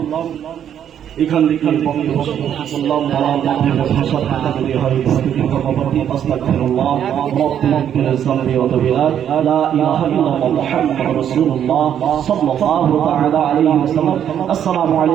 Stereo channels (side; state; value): left; quieter; 9.5 dB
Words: এখান থেকে বললাম ভাষা থাকা যদি হয় কর্মপতি আস্তাগফিরুল্লাহ রব্বুল জামবি ওয়া তাবিরা লা ইলাহা ইল্লাল্লাহ মুহাম্মাদুর রাসূলুল্লাহ সাল্লাল্লাহু তাআলা আলাইহি ওয়াসাল্লাম আসসালামু